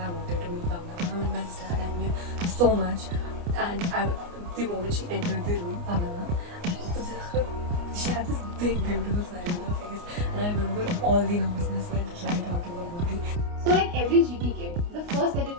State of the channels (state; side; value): late; left; 29 ms